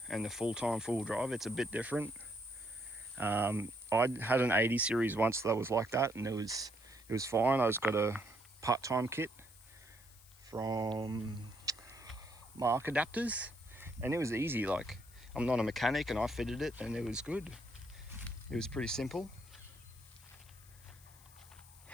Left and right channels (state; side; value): noise; left; hiss, 23 dB below the sound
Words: and the full-time full drive, it's a bit different. I had an 80 series once that was like that, and it was fine. I just got a part-time kit from Mark Adapters, and it was easy. Like, I'm not a mechanic and I fitted it and it was good. It was pretty simple.